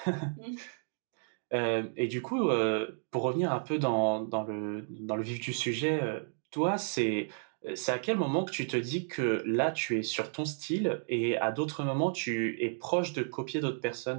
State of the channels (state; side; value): silent; left; digital silence